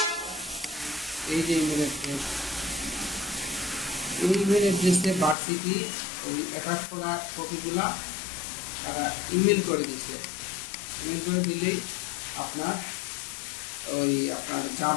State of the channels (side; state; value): right; drops out; at 5.4 s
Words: এই যে ইমেল অ্যাড্রেস, এই ইমেল অ্যাড্রেসে ভার্সিটি ওই অ্যাটাচ করা কপিগুলা তারা ইমেল করে দিচ্ছে। ইমেল করে দিলেই আপনার জাব